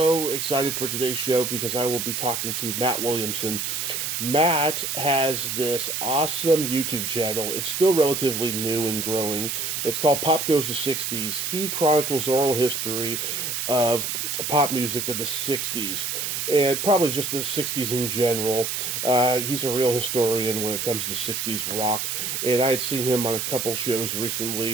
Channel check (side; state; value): right; noise; hiss, 2 dB below the sound